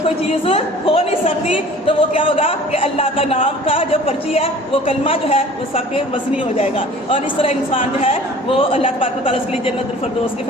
کوئی چیز ہو نہیں سکتی. تو وہ کیا ہوگا کہ اللہ کا نام کا جو پرچی ہے وہ کلمہ جو ہے وہ سب کے وزنی ہو جائے گا, اور اس طرح انسان جو ہے وہ اللہ تبارک و تعالیٰ اس کے لیے جنت الفردوس کے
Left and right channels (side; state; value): both; normal; correlation 0.47